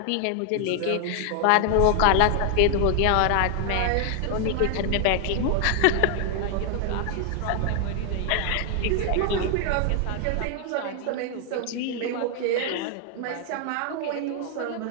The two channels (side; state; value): both; different; correlation 0.00